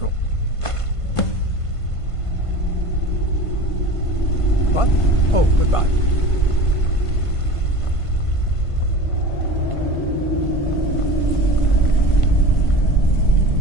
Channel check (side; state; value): right; late; 1.5 ms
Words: What? Oh, goodbye.